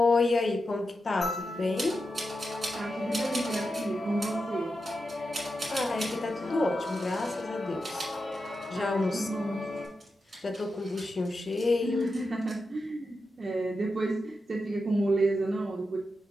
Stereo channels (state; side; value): normal; both; correlation 0.88